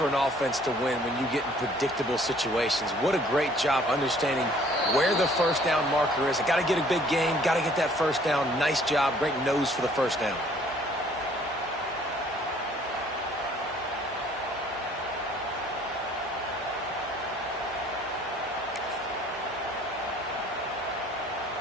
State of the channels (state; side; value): normal; both; correlation 0.57